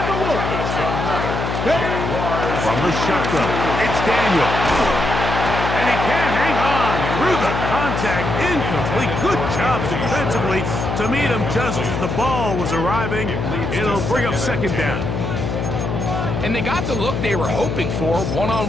Wolf. From the shotgun, it's Daniel. And he can't hang on through the contact. Incomplete. Good job defensively to meet him just as the ball was arriving. It'll bring up second down. And they got the look they were hoping for,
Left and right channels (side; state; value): left; noise; hum, 3 dB below the sound